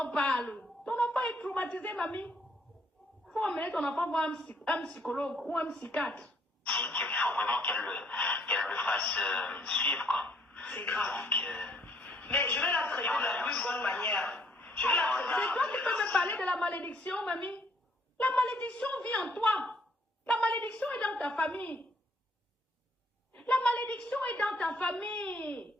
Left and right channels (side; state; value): both; normal; correlation 0.66